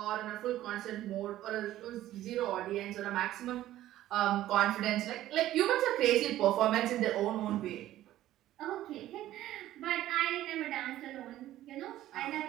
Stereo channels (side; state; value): left; quieter; 13.9 dB